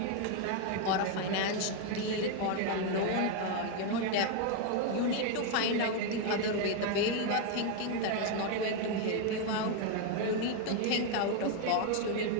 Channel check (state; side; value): different; both; correlation 0.01